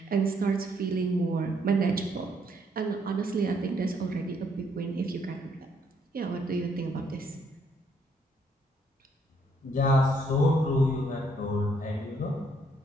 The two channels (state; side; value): normal; both; correlation 0.70